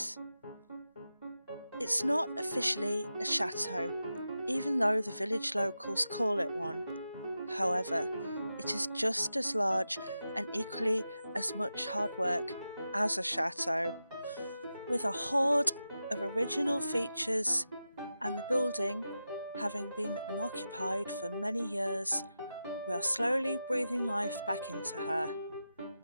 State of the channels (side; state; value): both; inverted; correlation -0.91